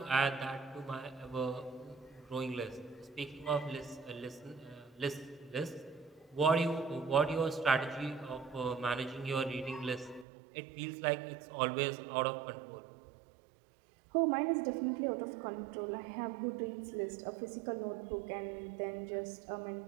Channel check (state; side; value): drops out; left; at 10.2 s